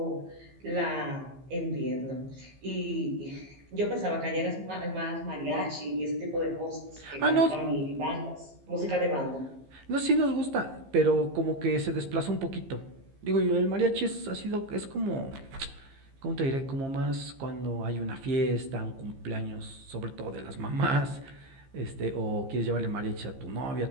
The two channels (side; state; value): left; late; 15 ms